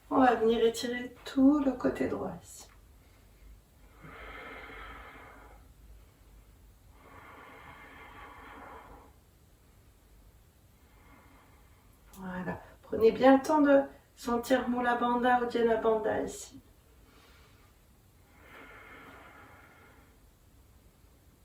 on va venir étirer tout le côté droit ici. Voilà. Prenez bien le temps de sentir Mula Bandha ou Dhyana Bandha ici.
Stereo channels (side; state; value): both; identical; correlation 1.00